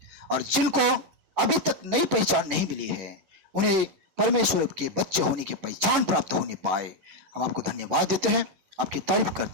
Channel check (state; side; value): late; left; 11 ms